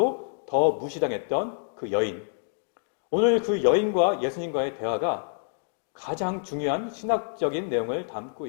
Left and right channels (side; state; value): right; silent; digital silence